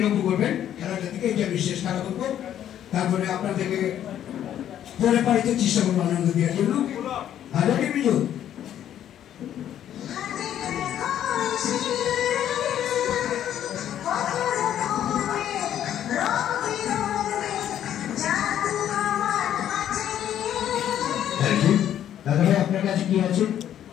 লক্ষ্য করবেন। খেলাটা থেকে এটা বিশেষ খেলা করবো, তারপরে আপনাদেরকে পরে পারিতে চেষ্টা করবো আনন্দ দেওয়ার জন্য। ভালো নেই বিজু? দাদা ভাই আপনার কাছে কি আছে?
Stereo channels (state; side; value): quieter; right; 10.7 dB